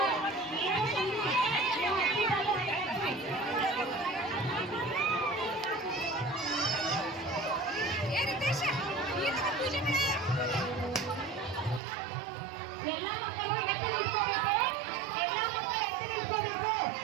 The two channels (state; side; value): drops out; left; at 11.8 s